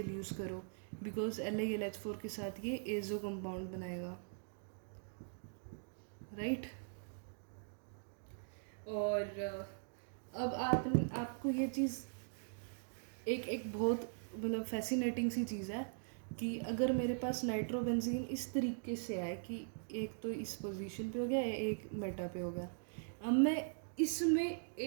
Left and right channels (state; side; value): silent; left; digital silence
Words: यूज़ करो, बिकॉज LiLH4 के साथ ये एजो कंपाउंड बनाएगा, राइट. और अब आपको ये चीज़ एक बहुत मतलब फैसिनेटिंग सी चीज़ है कि अगर मेरे पास नाइट्रोबेंजीन इस तरीके से आए कि एक तो इस पोजीशन पे हो गया, एक मेटा पे हो गया, अब मैं इसमें